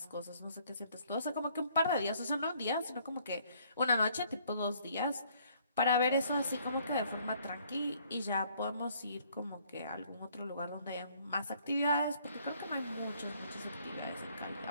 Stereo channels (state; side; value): inverted; both; correlation -0.63